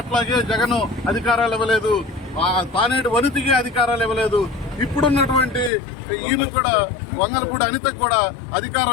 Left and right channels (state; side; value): drops out; right; at 5.7 s